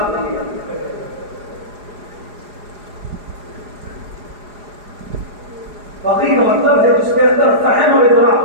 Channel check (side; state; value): left; late; 4.8 ms